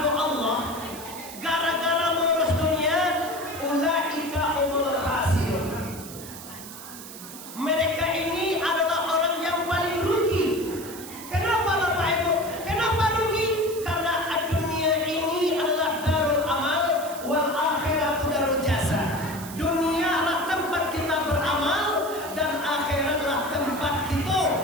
Allah gara-gara mengurus dunia, ulaika umul khasirun. Mereka ini adalah orang yang paling rugi. Kenapa Bapak Ibu? Kenapa rugi? Karena dunia ini adalah darul amal, wal akhiratu darul jasa. Dunia adalah tempat kita beramal dan akhiratlah tempat kita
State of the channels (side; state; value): right; noise; hiss, 13 dB below the sound